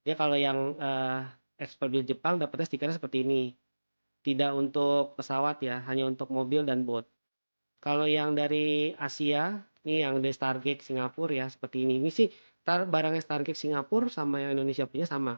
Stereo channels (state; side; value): inverted; both; correlation -1.00